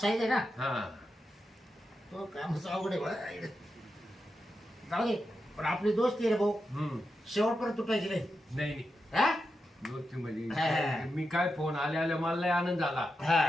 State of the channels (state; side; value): normal; both; correlation 0.88